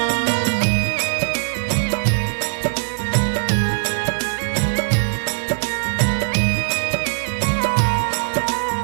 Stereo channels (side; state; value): left; silent; digital silence